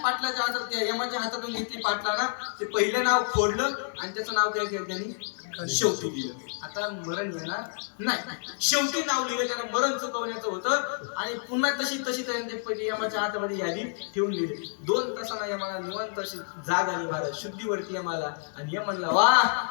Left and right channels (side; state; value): right; silent; 59 dB below the other